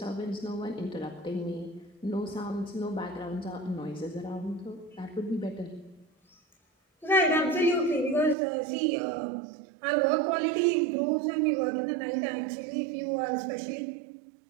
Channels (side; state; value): left; drops out; at 8.3 s